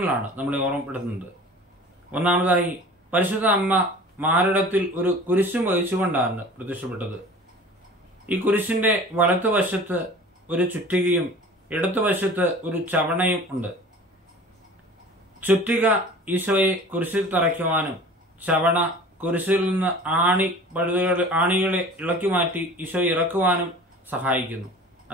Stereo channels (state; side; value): normal; both; correlation 0.42